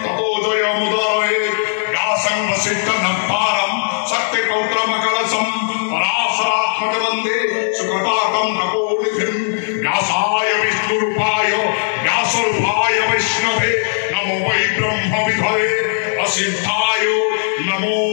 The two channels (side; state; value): right; silent; digital silence